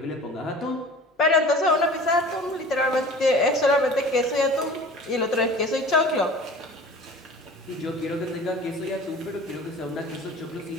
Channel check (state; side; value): normal; both; correlation 0.42